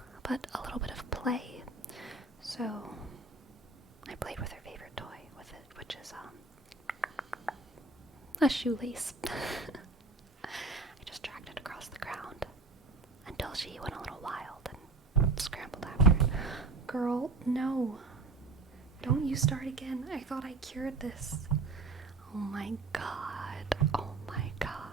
but a little bit of play. So I played with her favorite toy with it, which is a shoelace. I just dragged it across the ground until she went a little wild and scrambled after it. Girl, no. Don't you start again. I thought I cured this. Oh my god. Oh my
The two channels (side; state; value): left; quieter; 3.8 dB